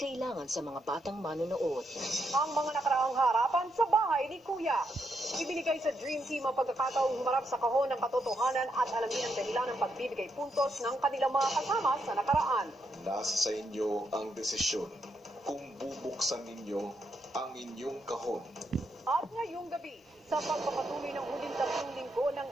sa mga batang manonood. Ang mga nakaraang harapan sa bahay ni Kuya. Ibinigay sa Dream Team ang pagkakataong humarap sa kahon ng katotohanan at alamin ang dahilan ng pagbibigay puntos ng kanilang mga kasama sa nakaraan. Nasa sa inyo ang desisyon kung bubuksan ninyo ang inyong kahon. At ngayong gabi, sa pagpapatuloy ng huling 3 linggo ng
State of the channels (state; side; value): normal; both; correlation 0.80